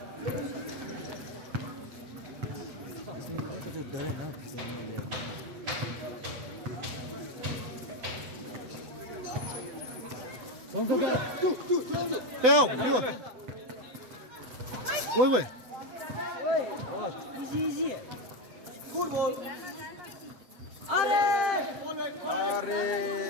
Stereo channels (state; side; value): late; left; 8.0 ms